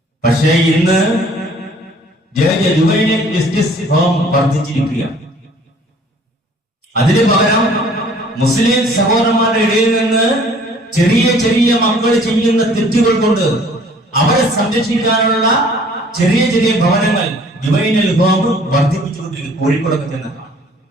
പക്ഷേ ഇന്ന് ജുവൈനൽ ജസ്റ്റിസ് ഹോം വർദ്ധിച്ചിരിക്കുക. അതിന് പകരം മുസ്ലിം സഹോദരന്മാരുടെ ഇടയിൽ നിന്ന് ചെറിയ ചെറിയ മക്കൾ ചെയ്യുന്ന തെറ്റുകൾ കൊണ്ട് അവരെ സംരക്ഷിക്കാനുള്ള ചെറിയ ചെറിയ ഭവനങ്ങൾ ജുവൈനൽ ഹോം വർദ്ധിപ്പിച്ചുകൊണ്ടിരിക്കും. കോഴിക്കോടൊക്കെ ചെന്ന്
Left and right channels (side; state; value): both; normal; correlation 0.55